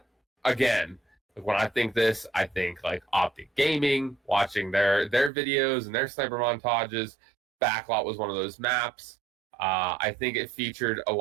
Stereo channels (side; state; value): left; drops out; at 5.3 s